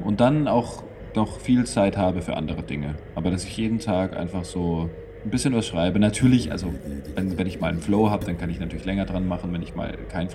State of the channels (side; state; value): both; identical; correlation 1.00